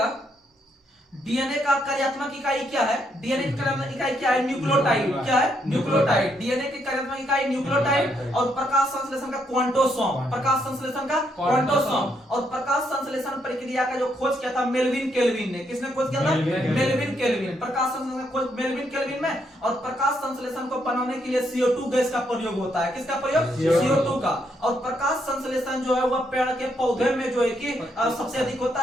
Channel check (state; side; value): normal; both; correlation 0.75